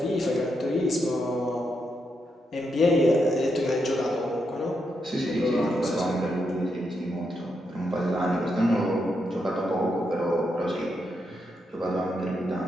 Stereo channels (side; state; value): both; normal; correlation 0.82